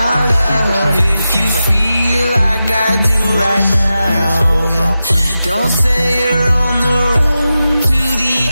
love, if you feel like I do right now, don't say you're on the run to the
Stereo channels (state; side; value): inverted; both; correlation -0.92